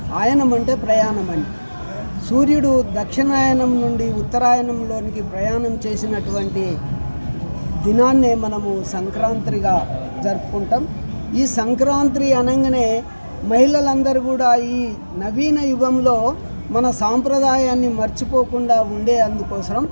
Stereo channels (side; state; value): both; inverted; correlation -1.00